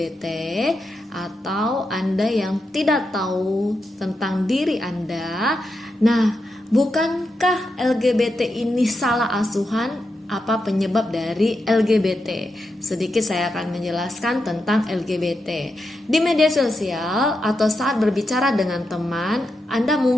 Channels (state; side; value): normal; both; correlation 0.86